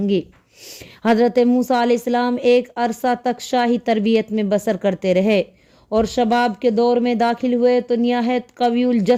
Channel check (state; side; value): identical; both; correlation 1.00